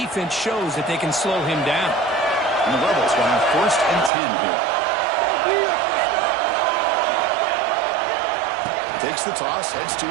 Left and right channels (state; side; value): drops out; left; at 4.1 s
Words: shows that they can slow him down. And the Rebels will have 1st and 10 here. Takes the toss, heads to